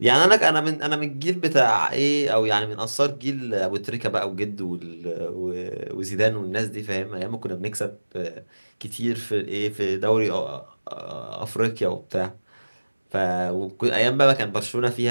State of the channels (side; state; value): both; inverted; correlation -1.00